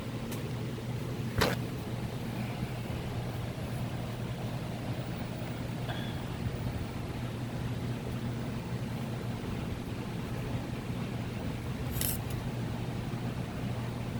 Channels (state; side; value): identical; both; correlation 1.00